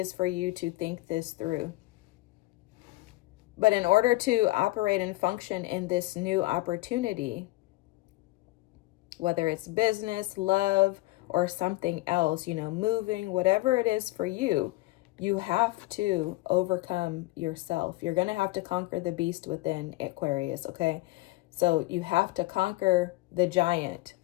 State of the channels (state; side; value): quieter; right; 19.8 dB